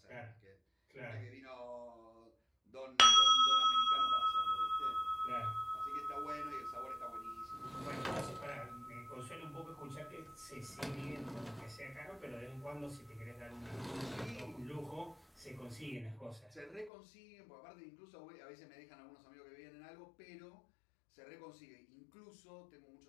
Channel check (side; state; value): right; drops out; at 16.9 s